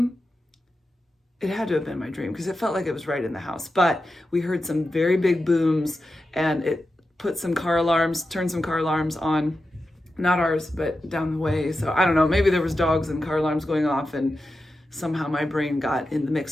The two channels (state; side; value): normal; both; correlation 0.91